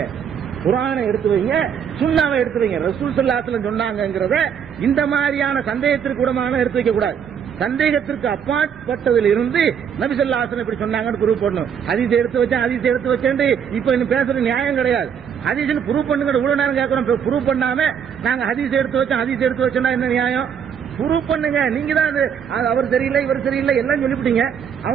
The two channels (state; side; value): quieter; left; 7.8 dB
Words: குர்ஆனை எடுத்து வைங்க, சுன்னாவை எடுத்து வைங்க. ரசூல் ஸல்லல்லாஹு அலைஹி வஸல்லம் சொன்னாங்கங்கறத இந்த மாதிரியான சந்தேகத்திற்கு கூடமான எடுத்து வைக்க கூடாது. சந்தேகத்திற்கு அப்பாற்பட்டதில் இருந்து நபி ஸல்லல்லாஹு அலைஹி வஸல்லம் இப்படி சொன்னாங்கன்னு ப்ரூவ் பண்ணணும். ஹதீஸ் எடுத்து வச்சேன் இப்ப இன்னும் பேசுற நியாயம் கிடையாது. ஹதீஸ்னு ப்ரூவ் பண்ணுங்க. இவ்வளவு நேரம் கேட்கறோம், ப்ரூவ் பண்ணாம நாங்க ஹதீஸ் எடுத்து வச்சோம்னா என்ன நியாயம்? ப்ரூவ் பண்ணுங்க. நீங்க தான் அவர் சரியில்லை இவர் சரியில்லை எல்லாம் சொல்லிவிட்டீங்க.